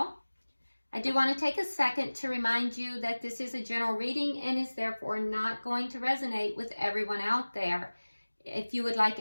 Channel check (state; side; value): inverted; both; correlation -1.00